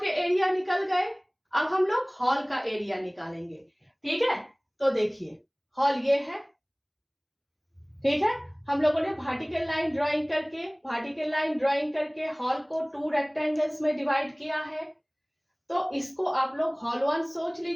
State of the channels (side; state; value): both; identical; correlation 1.00